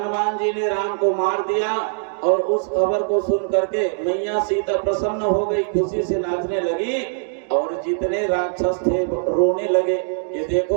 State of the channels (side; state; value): left; silent; digital silence